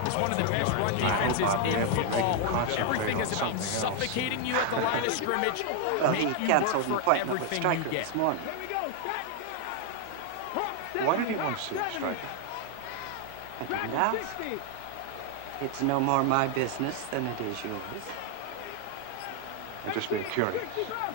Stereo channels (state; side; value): different; both; correlation 0.00